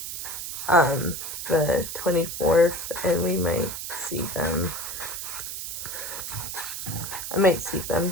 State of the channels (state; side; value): noise; right; hiss, 6 dB below the sound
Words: the 24th, and we might see them. I might see them